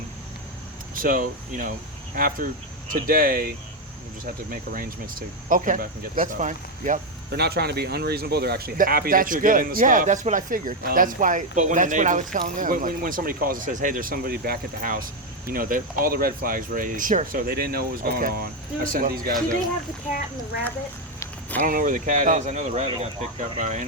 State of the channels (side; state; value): both; normal; correlation 0.06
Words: So after today, we just have to make arrangements to Okay. come back and get the That's stuff. fine. Yep. They're not trying to be unreasonable. They're actually happy that's that you're good. getting the Yeah, stuff. that's what I figured. That's why. But when That's the what I neighbor- was telling them. When somebody calls and says, "Hey, there's somebody back at the house," all the red flags raised. Sure. So they didn't know what was going Okay. on. I sent these guys do they over. have the cat and the rabbit? I don't know where the cat Oh. is. I know the rabbit got picked up by